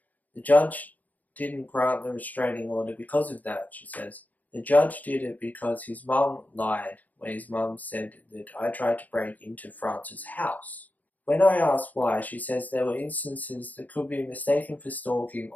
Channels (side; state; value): right; late; 0.079 ms